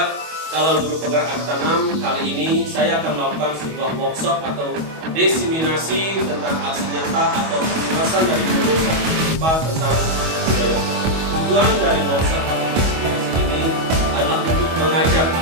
calon guru penggerak Angkatan 6. Kali ini saya akan melakukan sebuah workshop atau diseminasi tentang aksi nyata atau pembahasan dari modul 1.4 tentang budaya. Tujuan dari workshop atau diseminasi ini adalah untuk mengajak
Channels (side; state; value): left; late; 25 ms